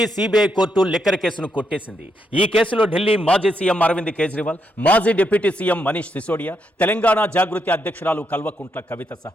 సిబిఐ కోర్టు లిక్కర్ కేసును కొట్టేసింది. ఈ కేసులో ఢిల్లీ మాజీ సీఎం అరవింద్ కేజ్రీవాల్, మాజీ డిప్యూటీ సీఎం మనీష్ సిసోడియా, తెలంగాణ జాగృతి అధ్యక్షురాలు కల్వకుంట్ల కవిత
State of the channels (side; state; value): both; normal; correlation 0.79